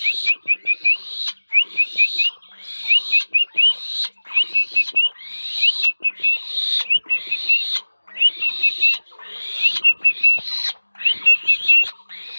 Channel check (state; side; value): inverted; both; correlation -1.00